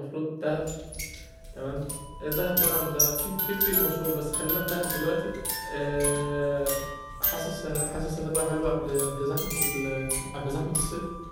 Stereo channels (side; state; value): both; identical; correlation 1.00